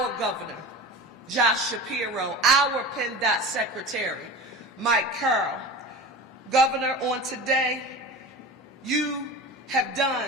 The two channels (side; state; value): both; normal; correlation 0.32